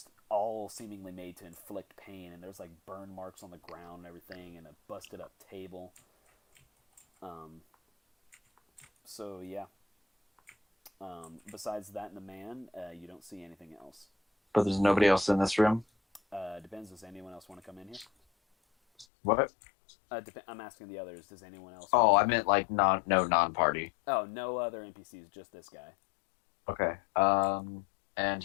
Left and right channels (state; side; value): drops out; right; at 19.1 s